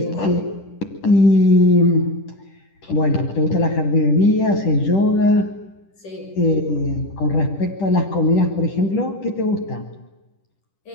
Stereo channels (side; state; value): right; late; 10 ms